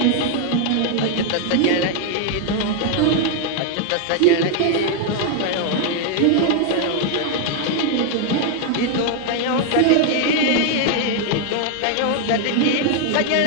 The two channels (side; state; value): both; different; correlation 0.00